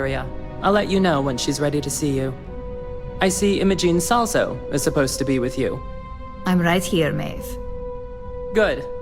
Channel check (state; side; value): identical; both; correlation 1.00